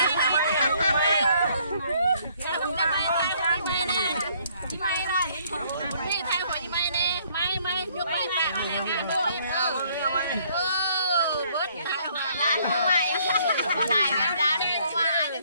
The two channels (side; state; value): both; inverted; correlation -0.64